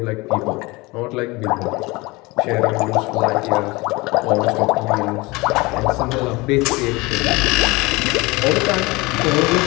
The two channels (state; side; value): quieter; right; 23.4 dB